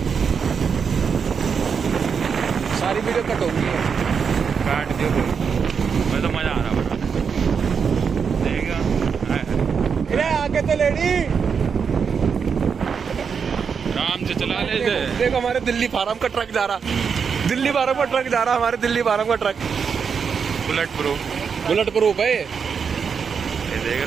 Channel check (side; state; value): left; quieter; 6.3 dB